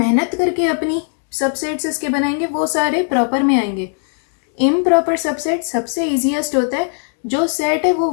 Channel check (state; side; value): silent; right; 59 dB below the other